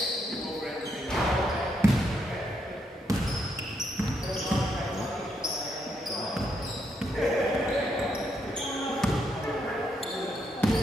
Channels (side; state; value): both; normal; correlation 0.78